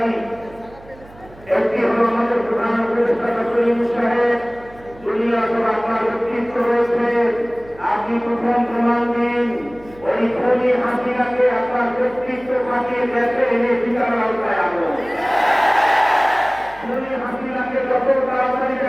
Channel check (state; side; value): noise; right; hum, 22 dB below the sound